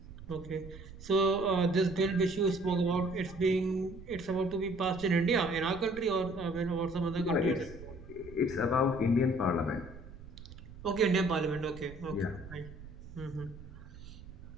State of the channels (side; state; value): right; noise; rumble, 15 dB below the sound